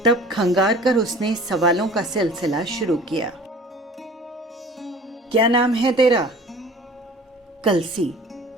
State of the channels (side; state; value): both; normal; correlation 0.46